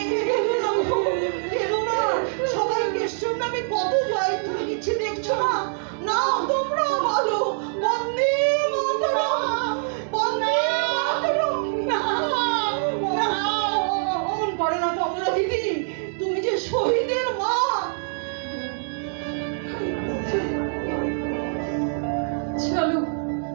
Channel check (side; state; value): left; silent; digital silence